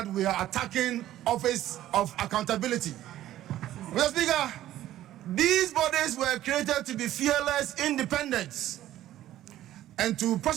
we are attacking office of accountability. Mr. Speaker, these bodies were created to be fearless, independent, and to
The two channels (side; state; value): left; quieter; 13.5 dB